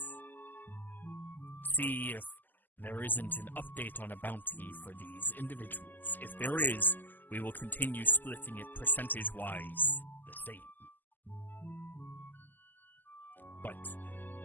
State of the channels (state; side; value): late; right; 0.087 ms